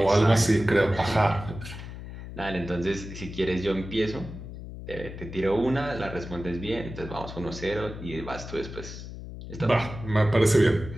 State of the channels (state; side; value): noise; left; hum, 11 dB below the sound